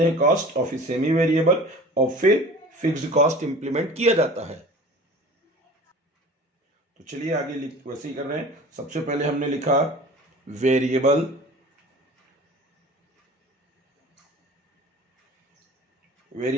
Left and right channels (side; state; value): both; normal; correlation 0.42